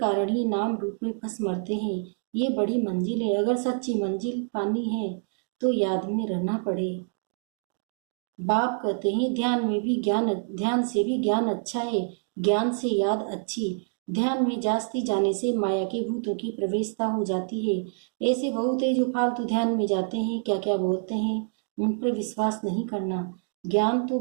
ही नाम रूप में फंस मरते हैं। ये बड़ी मंजिल है, अगर सच्ची मंजिल पानी है तो याद में रहना पड़े। बाप कहते हैं ध्यान से भी ज्ञान अच्छा है, ज्ञान से याद अच्छी। ध्यान में जास्ती जाने से माया के भूतों की प्रवेशता हो जाती है। ऐसे बहुत है जो फालतू ध्यान में जाते हैं, क्या क्या बोलते हैं, उन पर विश्वास नहीं करना। ज्ञान तो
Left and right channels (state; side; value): silent; left; digital silence